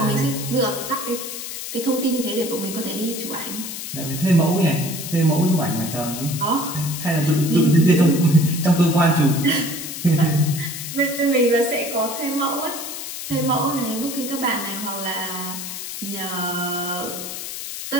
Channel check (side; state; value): left; noise; hiss, 7 dB below the sound